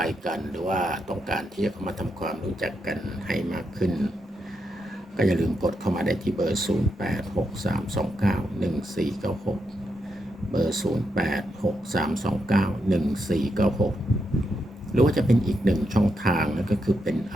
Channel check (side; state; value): both; normal; correlation 0.83